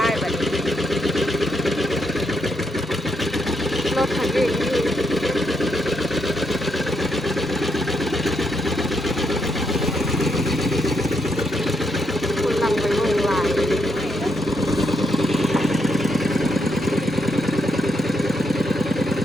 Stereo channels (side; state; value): both; normal; correlation 0.79